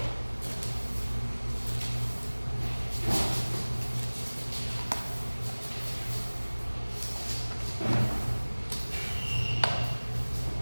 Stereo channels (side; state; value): both; inverted; correlation -1.00